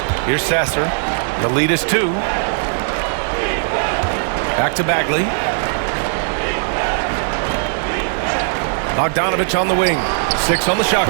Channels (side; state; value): left; silent; 66 dB below the other